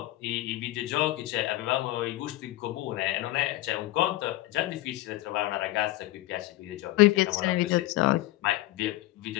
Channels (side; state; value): right; quieter; 17.2 dB